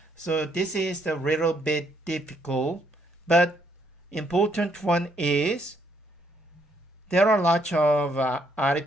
So this is a little bit difficult, but important one is there are lots of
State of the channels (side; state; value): both; normal; correlation 0.71